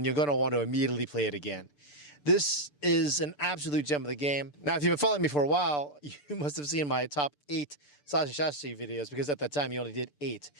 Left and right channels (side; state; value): right; late; 6.8 ms